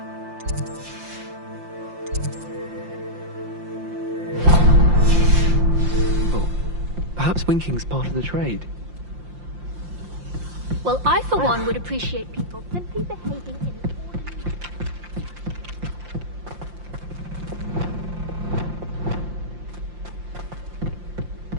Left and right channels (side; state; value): left; late; 5.7 ms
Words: Perhaps winking's part of the trade. Well, I for one would appreciate people simply behaving in an orderly...